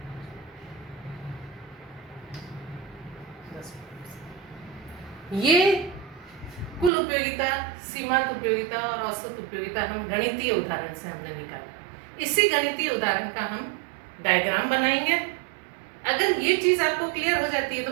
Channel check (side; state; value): left; drops out; at 6.9 s